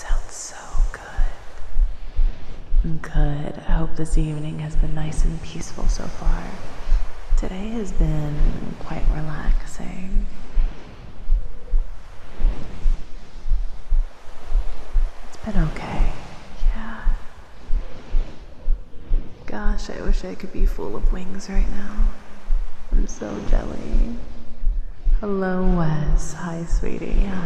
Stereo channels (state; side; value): identical; both; correlation 1.00